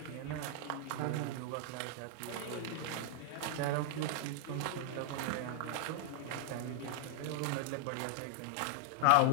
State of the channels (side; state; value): both; different; correlation -0.01